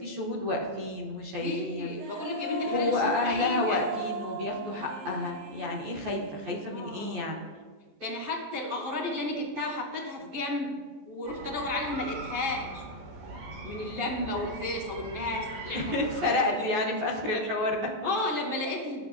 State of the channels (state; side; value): late; left; 14 ms